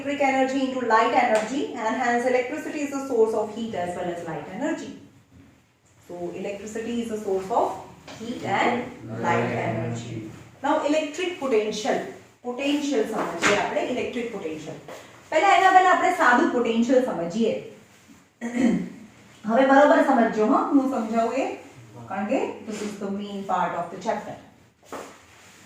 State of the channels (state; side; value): identical; both; correlation 1.00